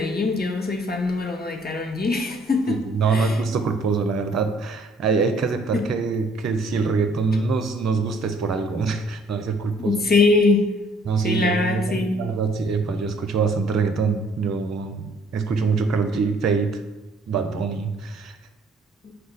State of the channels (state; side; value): normal; both; correlation 0.60